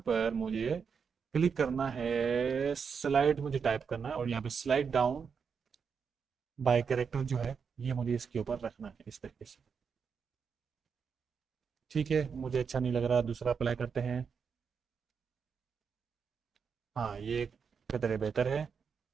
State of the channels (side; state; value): left; quieter; 6.2 dB